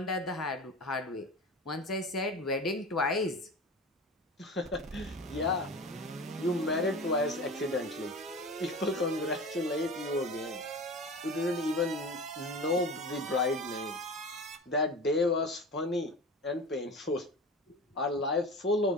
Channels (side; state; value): both; normal; correlation 0.32